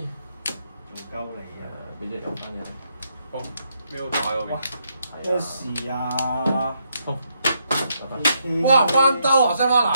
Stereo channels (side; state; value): both; inverted; correlation -0.77